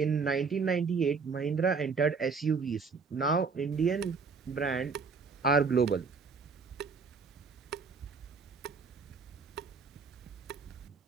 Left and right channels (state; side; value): quieter; left; 5.0 dB